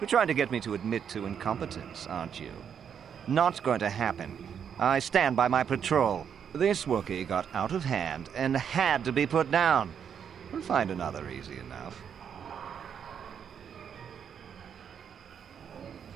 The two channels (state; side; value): quieter; left; 7.9 dB